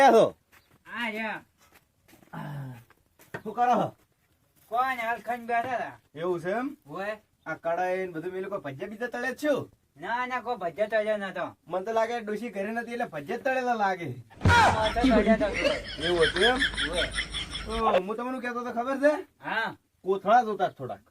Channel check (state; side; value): identical; both; correlation 1.00